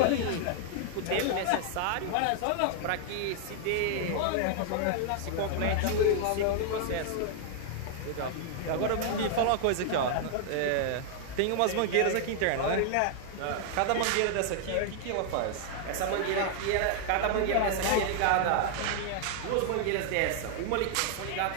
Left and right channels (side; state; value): both; different; correlation 0.00